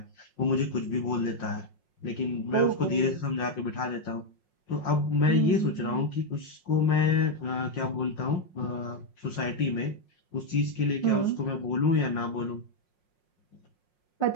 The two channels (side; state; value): right; late; 5.6 ms